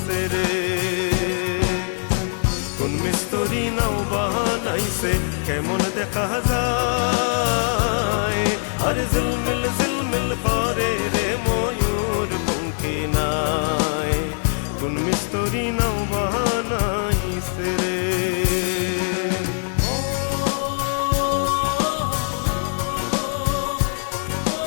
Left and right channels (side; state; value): right; silent; 61 dB below the other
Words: রে, কোন মিস্তরি নাও বানাইছে কেমন দেখা যায়, আর ঝিলমিল ঝিলমিল করে রে ময়ূর পঙ্খী নাই, কোন মিস্তরি নাও বানাইছে রে।